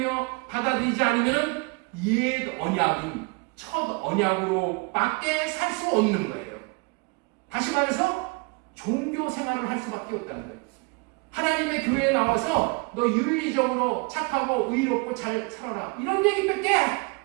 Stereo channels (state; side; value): quieter; left; 30.4 dB